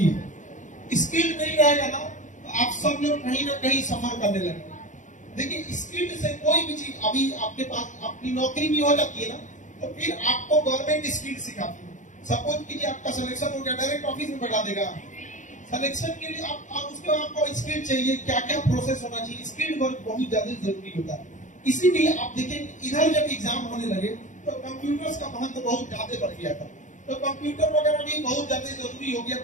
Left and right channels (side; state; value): right; late; 0.36 ms